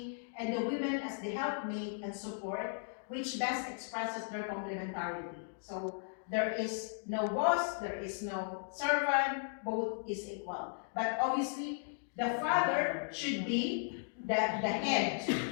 and the women as the helpmate and support, which best expresses their complementarity. So there is no boss, there is no servant, both is equal. But obviously, the father should be the head,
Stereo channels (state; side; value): silent; right; digital silence